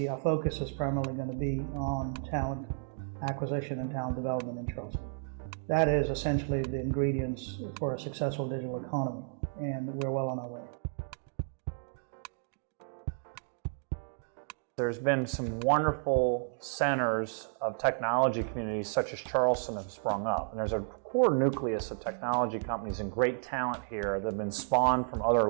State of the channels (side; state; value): left; silent; digital silence